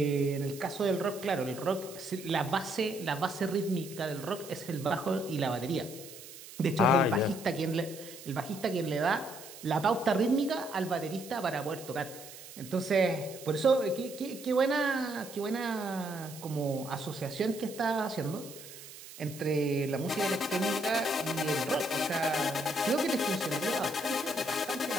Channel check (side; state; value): right; noise; hiss, 15 dB below the sound